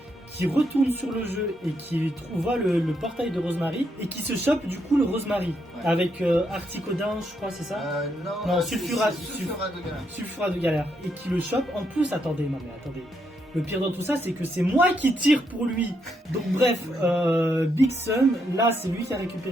qui retourne sur le jeu et qui voit le portail de Rosemary et qui se chope du coup le Rosemary avec Articodin, je crois, c'est ça? Non, Sulfura de galère et qui le chope. En plus, attendez. Le pire dans tout ça, c'est que c'est moi qui tire pour lui. Donc bref, Big Sun, là c'est lui qui a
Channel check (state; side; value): normal; both; correlation 0.78